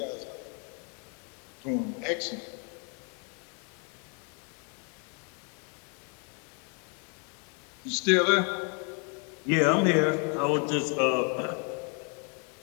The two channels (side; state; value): right; quieter; 38.1 dB